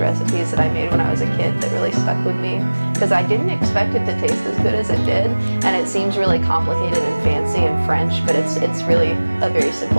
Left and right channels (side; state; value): both; inverted; correlation -1.00